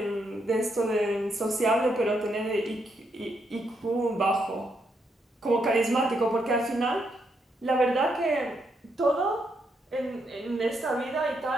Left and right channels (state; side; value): normal; both; correlation 0.78